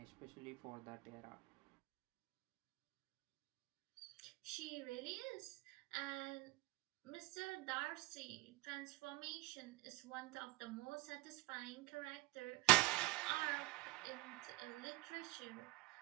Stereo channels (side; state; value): left; quieter; 22.1 dB